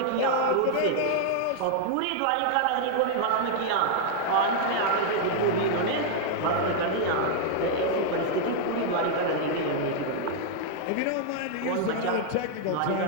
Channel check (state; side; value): different; both; correlation -0.01